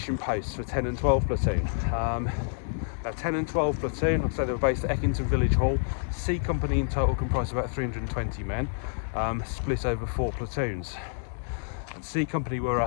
posts for 10 and 12 platoon. Now 10 and 12 platoon, like I say, they were based at Eckington Village Hall. C Company in total comprised about 320 men, split over 4 platoons. And C Company were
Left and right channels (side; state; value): right; silent; 59 dB below the other